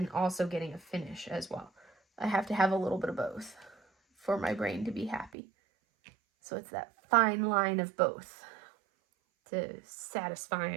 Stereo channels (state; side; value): drops out; left; at 5.3 s